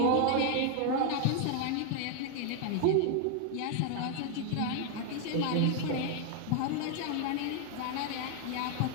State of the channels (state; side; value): different; both; correlation 0.00